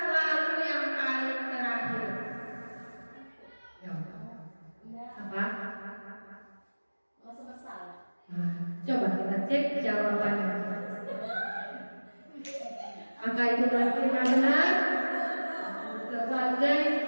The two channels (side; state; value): both; inverted; correlation -1.00